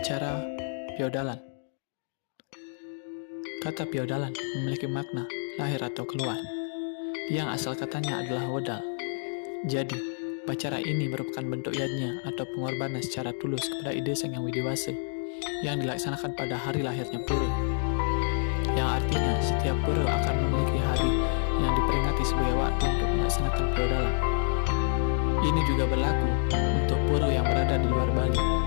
Piodalan. Kata piodalan memiliki makna lahir atau keluar, yang asal katanya adalah wedal. Jadi, upacara ini merupakan bentuk yadnya atau pengorbanan secara tulus kepada ide Sang Yang Widiwasa yang dilaksanakan pada hari lahirnya Pura, yang artinya setiap Pura akan memiliki hari yang diperingati sebagai waktu untuk melaksanakan piodalan. Ini juga berlaku untuk Pura yang berada di luar Bali.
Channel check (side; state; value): right; silent; digital silence